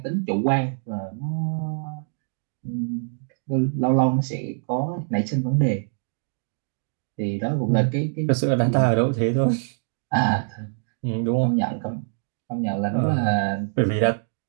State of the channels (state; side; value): silent; left; digital silence